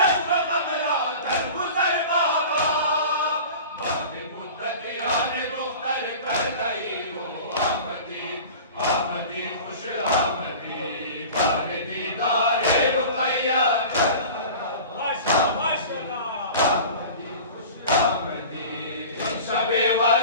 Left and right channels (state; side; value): inverted; both; correlation -0.38